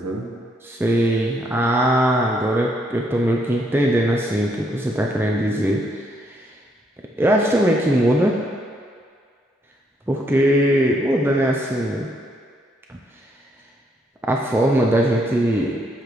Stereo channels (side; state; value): both; normal; correlation 0.73